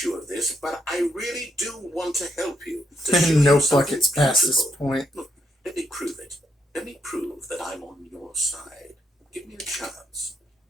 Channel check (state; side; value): normal; both; correlation 0.77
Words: you of this, but I really do want to help you. To show No you something buckets past this beautiful. point. Look, let me prove it. Let me prove that I'm on your side. Give me a chance.